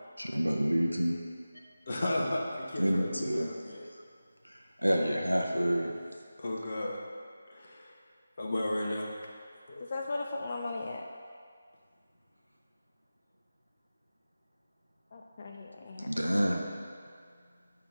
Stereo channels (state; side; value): inverted; both; correlation -0.96